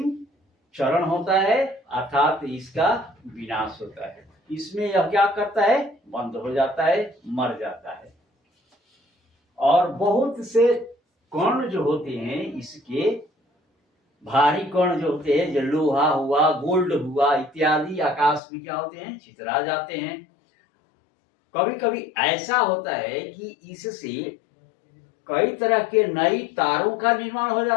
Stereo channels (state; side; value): drops out; right; at 18.4 s